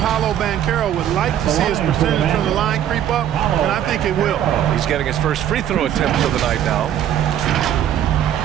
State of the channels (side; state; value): left; quieter; 10.6 dB